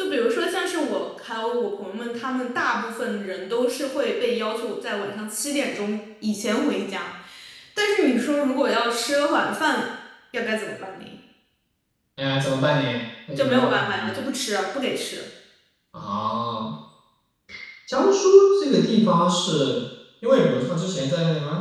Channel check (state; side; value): identical; both; correlation 1.00